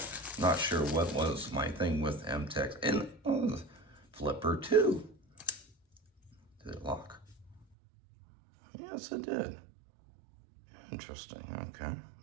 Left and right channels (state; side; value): drops out; left; at 7.7 s